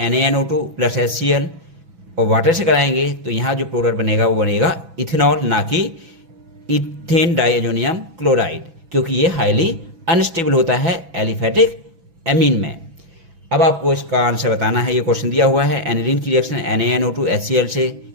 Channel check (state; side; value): late; left; 6.0 ms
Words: NaNO2 प्लस HCl और वाटर से कराएंगे तो यहाँ जो प्रोडक्ट बनेगा वो बनेगा इथेनॉल, ना कि इथेन डाइअमोनियम क्लोराइड, क्योंकि ये हाईली अनस्टेबल होता है एलिफेटिक एमीन में। अब आपको इसका आंसर बताना है, ये क्वेश्चन दिया हुआ है। एनिलीन की रिएक्शन NaNO2 HCl से